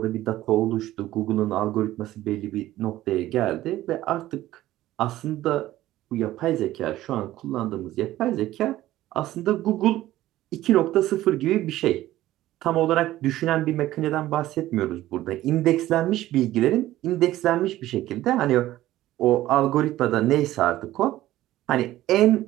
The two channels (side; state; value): left; quieter; 15.0 dB